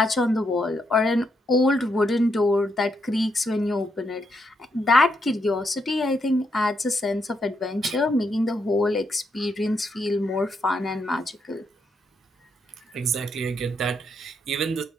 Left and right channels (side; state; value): both; normal; correlation 0.79